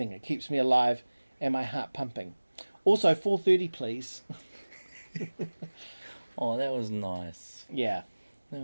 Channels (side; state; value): both; inverted; correlation -1.00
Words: It keeps me alive and my heart pumping. Also, 4:30, please. Oh, that was nice. Yeah. That